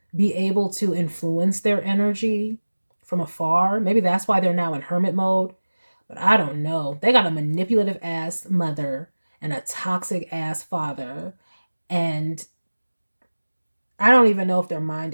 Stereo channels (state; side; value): inverted; both; correlation -1.00